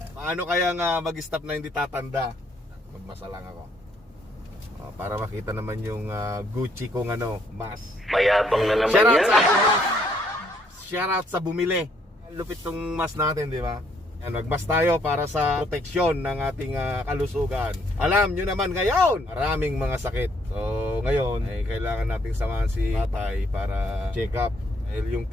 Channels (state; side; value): normal; both; correlation 0.68